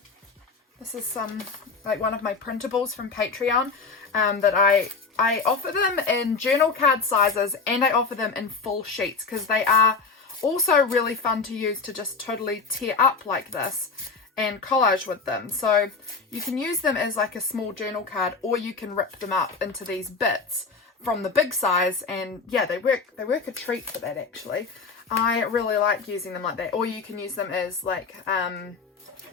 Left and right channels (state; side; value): quieter; right; 4.6 dB